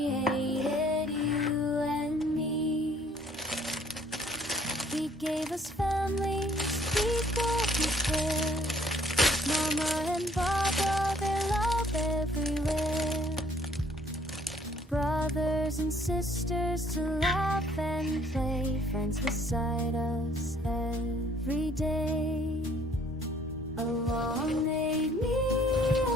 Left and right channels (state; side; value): normal; both; correlation 0.60